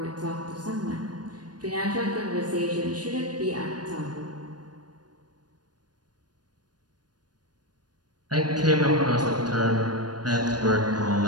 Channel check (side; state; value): left; late; 0.69 ms